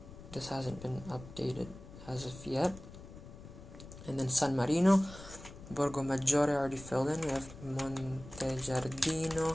This hasn't been updated as of yet. And then San Marino, Borgo Maggiore already filled in. We have Monte Giardino,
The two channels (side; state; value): left; noise; rumble, 15 dB below the sound